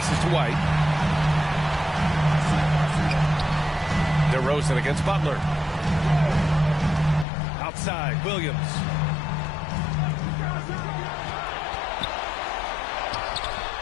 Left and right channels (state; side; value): drops out; right; at 7.2 s